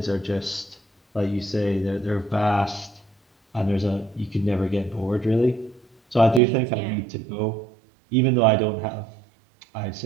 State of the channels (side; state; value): left; drops out; at 6.4 s